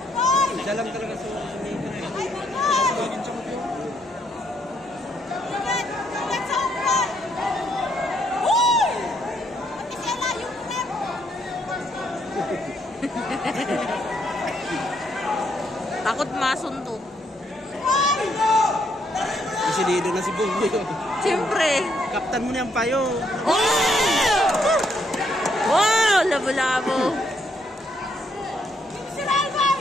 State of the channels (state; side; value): normal; both; correlation 0.73